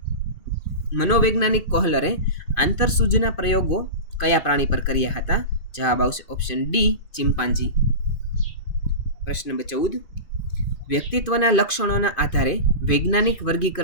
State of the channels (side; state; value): right; late; 2.5 ms